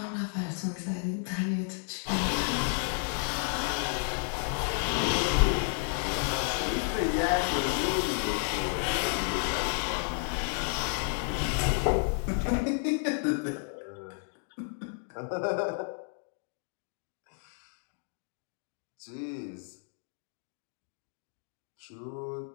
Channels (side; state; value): right; silent; 57 dB below the other